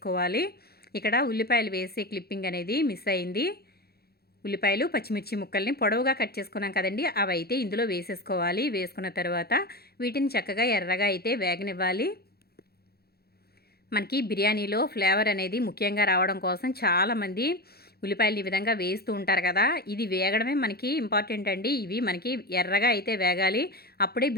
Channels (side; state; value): right; late; 0.46 ms